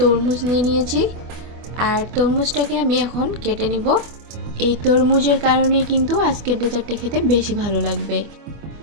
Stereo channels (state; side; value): late; left; 24 ms